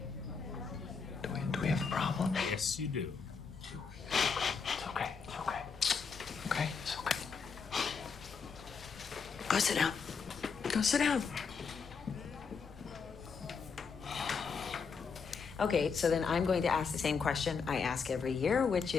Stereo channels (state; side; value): quieter; right; 5.6 dB